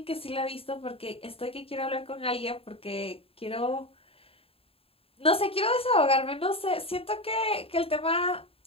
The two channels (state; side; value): late; right; 0.27 ms